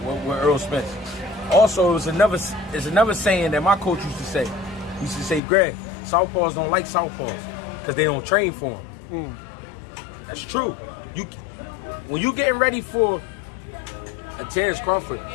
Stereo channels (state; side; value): drops out; right; at 5.4 s